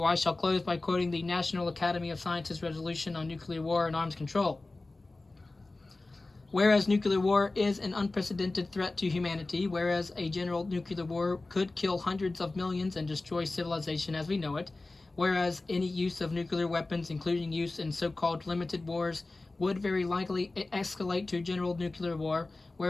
I shall close by quoting the National Academy of Sciences resolution on nuclear war and arms control. Whereas nuclear war is an unprecedented threat to humanity, whereas a general nuclear war could kill hundreds of millions and destroy civilization as we know it, whereas any use of nuclear weapons, including use in so-called limited wars, would very likely escalate to general nuclear war,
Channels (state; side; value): quieter; right; 3.2 dB